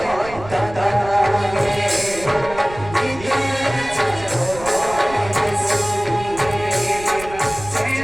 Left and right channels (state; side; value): noise; right; rumble, 15 dB below the sound